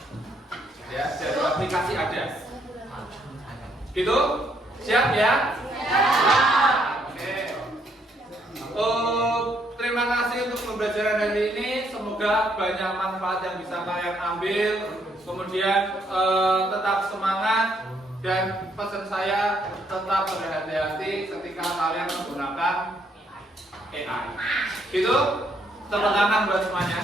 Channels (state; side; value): normal; both; correlation 0.71